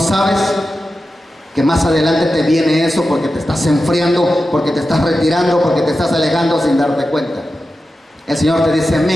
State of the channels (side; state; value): both; normal; correlation 0.92